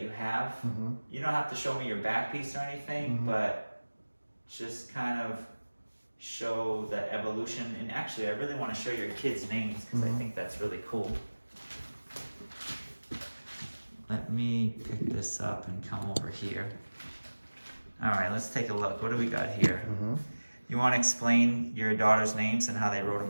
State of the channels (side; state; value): both; inverted; correlation -1.00